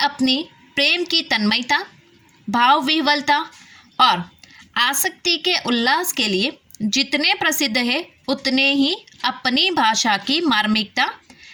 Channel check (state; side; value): identical; both; correlation 1.00